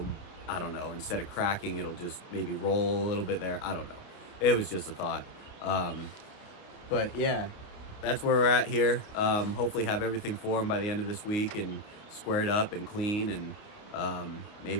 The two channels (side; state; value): right; late; 28 ms